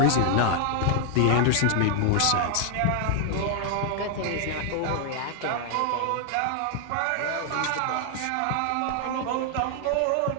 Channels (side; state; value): both; different; correlation 0.00